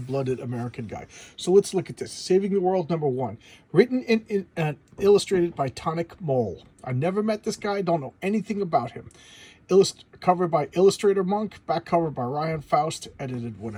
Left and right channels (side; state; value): both; identical; correlation 1.00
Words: American guy. So let's look at this. Saving the World number 1. Written and illustrated by Tonic Mole. I've never met this guy. Don't know anything about him. Cover by Illustrator Monk. Back cover by Ryan Faust. Edited